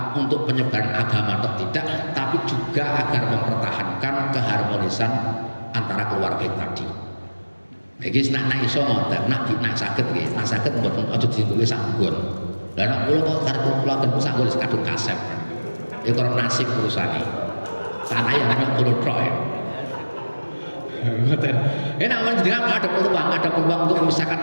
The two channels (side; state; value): both; inverted; correlation -1.00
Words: untuk penyebaran agama atau tidak, tapi juga agar mempertahankan keharmonisan antara keluarga tadi. Iki nak iso ngoten, nak saged nggih, nak saged mboten aja ditulis sanggon. Lah nek kula kok karep kula ten sanggon kadung kasep. Ya karo nasib urusane. Tanah yang namanya kulo tok ya. Ngoten. Enak menjenengan ada peluang untuk